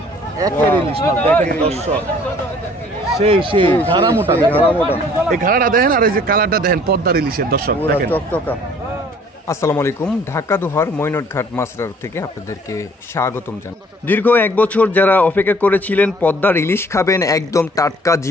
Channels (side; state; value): both; normal; correlation 0.56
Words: সেই সেই ঘাড়া মোটা, এই ঘাড়াটা দেখেন আর এই যে কালারটা দেখেন পদ্মার ইলিশের। দর্শক দেখেন চকচকা। আসসালামু আলাইকুম, ঢাকা দোহার মৈনটঘাট মাছরার থেকে আপনাদেরকে স্বাগতম জানাই। দীর্ঘ 1 বছর যারা অপেক্ষা করেছিলেন পদ্মার ইলিশ খাবেন, একদম টাটকা